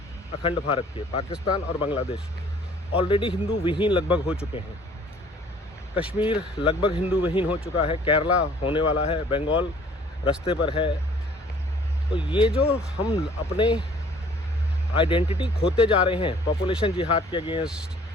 अखंड भारत के, पाकिस्तान और बांग्लादेश, ऑलरेडी हिंदू विहीन लगभग हो चुके हैं। कश्मीर लगभग हिंदू विहीन हो चुका है, केरला होने वाला है, बंगाल रास्ते पर है। तो ये जो हम अपने आइडेंटिटी खोते जा रहे हैं, पॉपुलेशन जिहाद के अगेंस्ट,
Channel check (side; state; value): both; normal; correlation 0.55